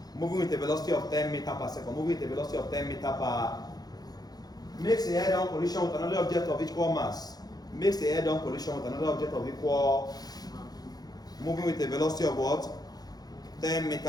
Moving with a velocity of 10 meters per second. Moving with a velocity of 10 meters per. Makes a head-on collision with another object of equal mass. Makes a head-on collision with another object of equal. Moving with a velocity of what? 10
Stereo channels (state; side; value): late; right; 0.19 ms